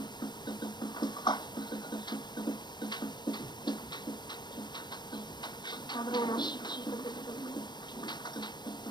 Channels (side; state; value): right; late; 0.21 ms